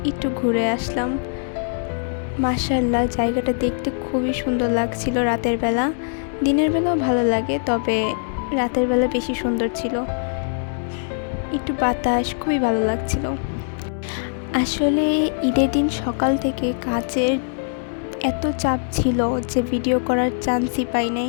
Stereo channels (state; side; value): silent; right; 64 dB below the other